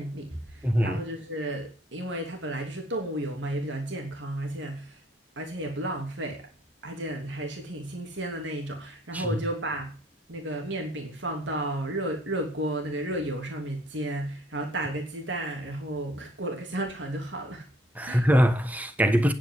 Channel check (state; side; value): normal; both; correlation 0.62